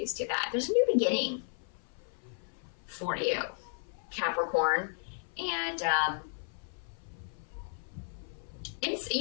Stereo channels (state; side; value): silent; right; 55 dB below the other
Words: to that. There's a new beginning for you, Capricorn. And, and